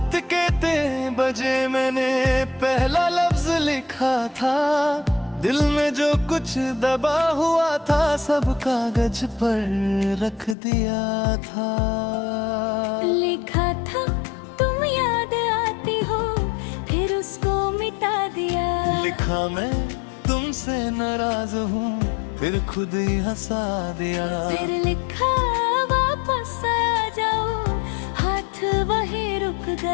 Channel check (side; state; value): right; drops out; at 10.6 s